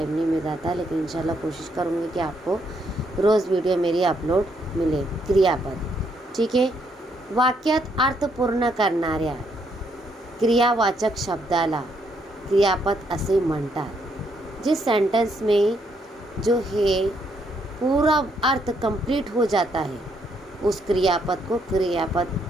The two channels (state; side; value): normal; both; correlation 0.73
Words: नहीं मिल रहा था। लेकिन इंशाल्लाह कोशिश करूँगी कि आपको रोज़ वीडियो मेरी अपलोड मिले। क्रियापद, ठीक है। वाक्यात अर्थ पूर्ण करणाऱ्या क्रियावाचक शब्दाला क्रियापद असे म्हणतात। जिस सेंटेंस में जो है पूरा अर्थ कंप्लीट हो जाता है, उस क्रियापद को क्रियापद